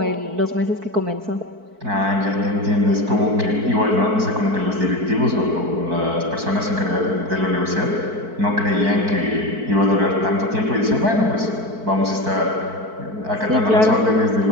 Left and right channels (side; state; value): left; late; 4.5 ms